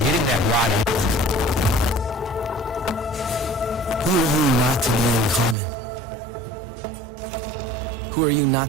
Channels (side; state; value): left; drops out; at 5.6 s